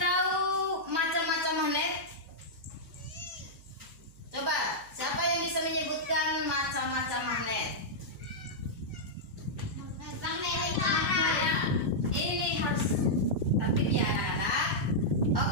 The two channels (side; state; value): right; noise; hum, 23 dB below the sound